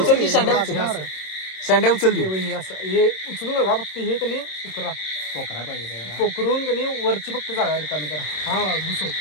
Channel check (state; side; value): late; right; 26 ms